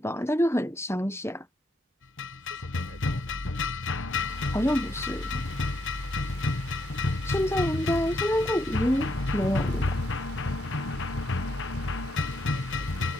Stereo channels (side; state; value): both; normal; correlation 0.77